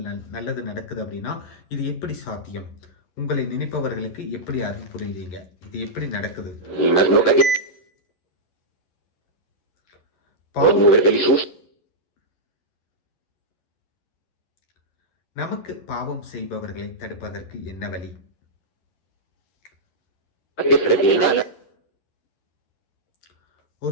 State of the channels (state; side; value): late; right; 11 ms